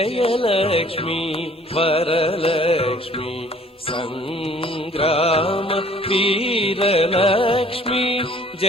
వరలక్ష్మి సంగ్రామ వీరలక్ష్మి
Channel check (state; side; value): normal; both; correlation 0.55